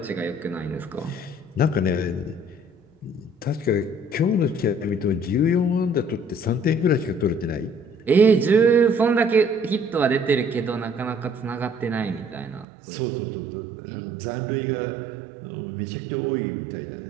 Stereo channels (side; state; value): left; drops out; at 12.7 s